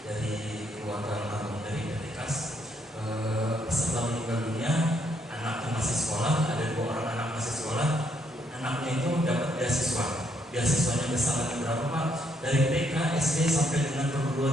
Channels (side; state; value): both; normal; correlation 0.73